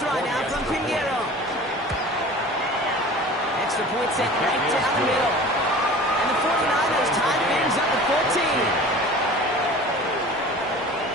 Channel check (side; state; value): both; normal; correlation 0.41